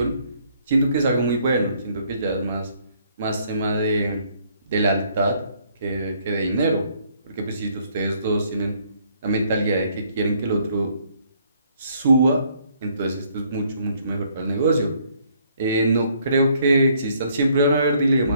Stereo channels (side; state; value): both; inverted; correlation -0.66